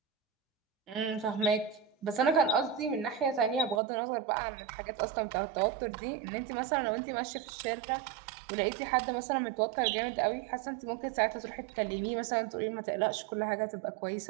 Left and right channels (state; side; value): drops out; left; at 3.8 s